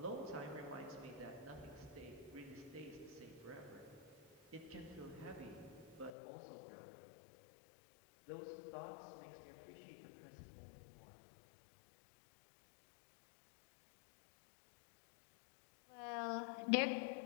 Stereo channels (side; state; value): right; drops out; at 6.1 s